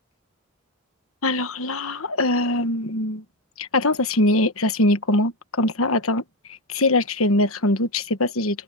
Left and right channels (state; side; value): normal; both; correlation 0.12